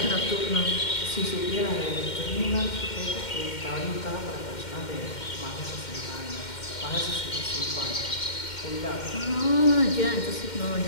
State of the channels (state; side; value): late; right; 2.1 ms